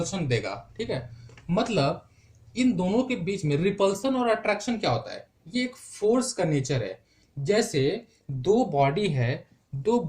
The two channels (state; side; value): identical; both; correlation 1.00